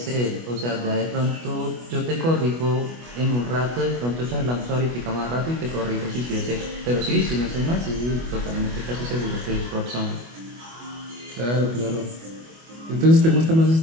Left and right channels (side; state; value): left; late; 25 ms